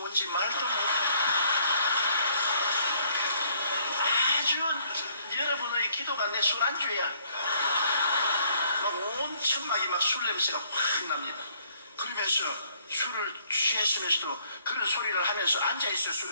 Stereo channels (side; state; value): both; inverted; correlation -0.64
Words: 말도 아주 여러분의 기도가 내 술안주야. 막 온 천막이 막 술 냄새가 확 납니다. 그러면서 술을 취했으면서도 그런 소리를 하면서 앉아있어